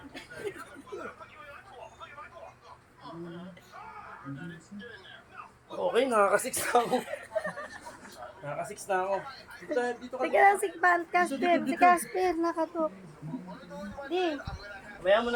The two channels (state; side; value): identical; both; correlation 1.00